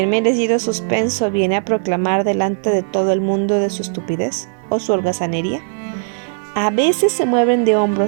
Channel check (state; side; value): silent; left; 56 dB below the other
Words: merecido suspenso viene a proclamar delante de todo el mundo de su estupidez o su holgazanería, a veces se mueven de